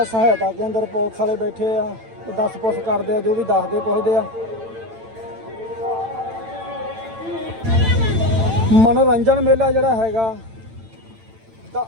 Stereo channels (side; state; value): left; late; 8.9 ms